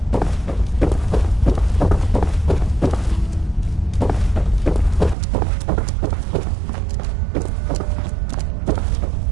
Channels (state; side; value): drops out; left; at 5.2 s